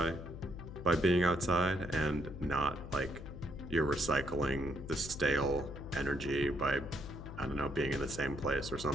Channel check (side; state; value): left; noise; hum, 11 dB below the sound